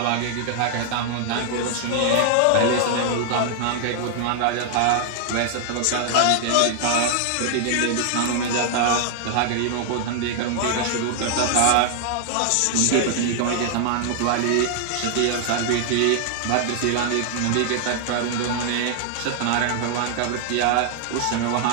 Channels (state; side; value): different; both; correlation 0.00